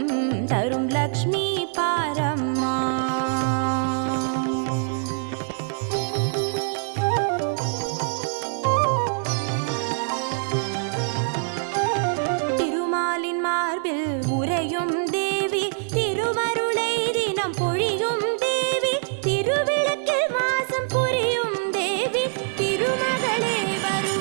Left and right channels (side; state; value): left; silent; digital silence